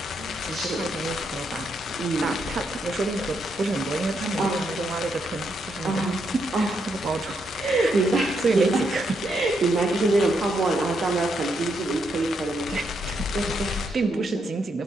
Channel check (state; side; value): normal; both; correlation 0.79